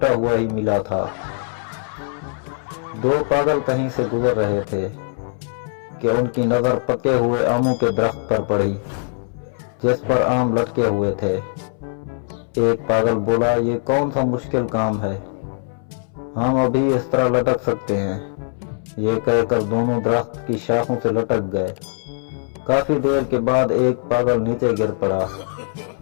हुआ ही मिला था। 2 पागल कहीं से गुजर रहे थे कि उनकी नजर पके हुए आमों के दरख्त पर पड़ी जिस पर आम लटके हुए थे। एक पागल बोला, ये कौन सा मुश्किल काम है, हम अभी इस तरह लटक सकते हैं। ये कहकर दोनों दरख्त की शाखों से लटक गए। काफी देर के बाद एक पागल नीचे गिर पड़ा।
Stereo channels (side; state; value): right; silent; 65 dB below the other